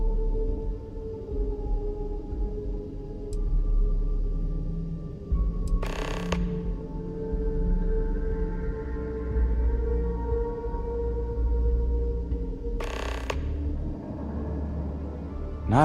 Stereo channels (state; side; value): identical; both; correlation 1.00